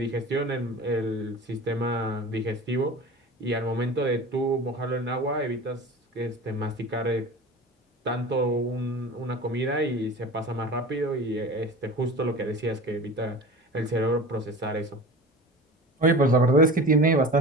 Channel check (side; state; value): both; normal; correlation 0.36